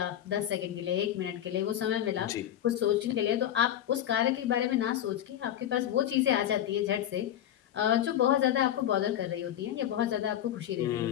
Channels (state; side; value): quieter; right; 11.1 dB